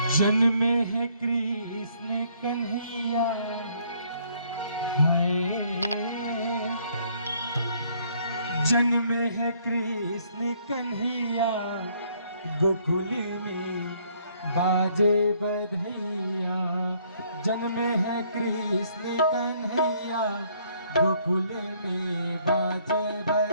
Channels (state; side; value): inverted; both; correlation -0.65